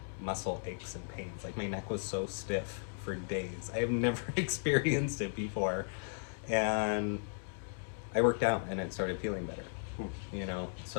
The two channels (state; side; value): silent; right; 54 dB below the other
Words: muscle aches and pains. Like my neck was so stiff for days. I have never experienced it before. And I worked out and it started feeling better.